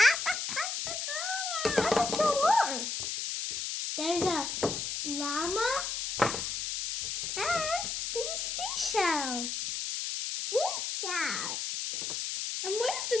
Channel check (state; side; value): noise; left; hiss, 3 dB below the sound